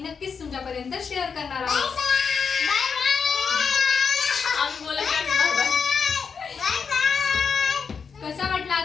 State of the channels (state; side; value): quieter; right; 6.0 dB